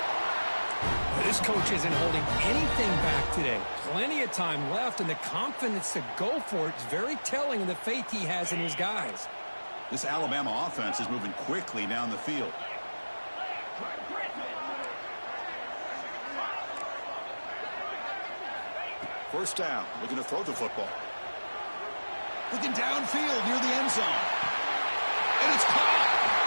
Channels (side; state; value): both; inverted; correlation -1.00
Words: This coach isn't holding anything back today. Plenty of time left, and the confidence to go for it is very telling of the faith he has in his guys. This Alabama offense is moving quickly down the field. First down, looking to throw the football. Looking downfield near the end zone. And it's caught.